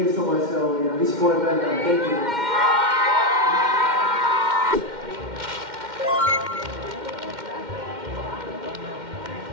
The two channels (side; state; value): left; late; 2.1 ms